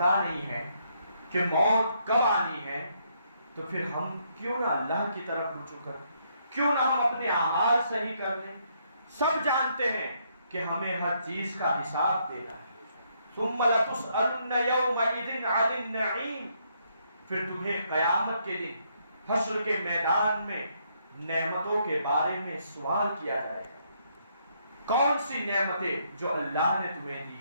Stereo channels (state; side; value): inverted; both; correlation -0.73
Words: نہیں ہے کہ موت کب آنی ہے تو پھر ہم کیوں نہ اللہ کی طرف رجوع کریں، کیوں نہ ہم اپنے اعمال صحیح کر دیں۔ سب جانتے ہیں کہ ہمیں ہر چیز کا حساب دینا ہے۔ ثم لتسألن یومئذ عن النعیم، پھر تمہیں قیامت کے دن حشر کے میدان میں نعمتوں کے بارے میں سوال کیا جائے گا۔ کون سی نعمتیں جو اللہ نے تمہیں دی